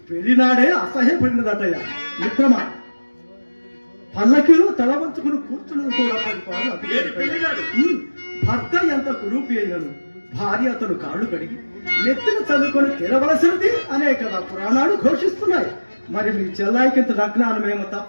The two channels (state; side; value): inverted; both; correlation -1.00